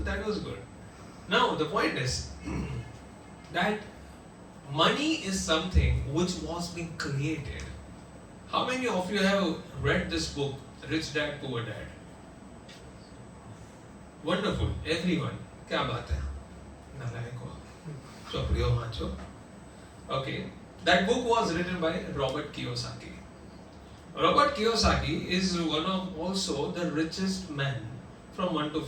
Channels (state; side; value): identical; both; correlation 1.00